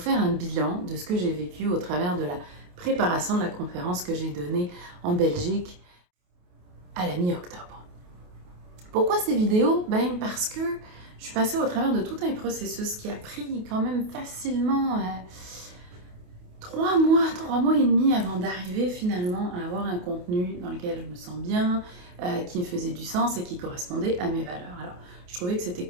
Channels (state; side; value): late; left; 28 ms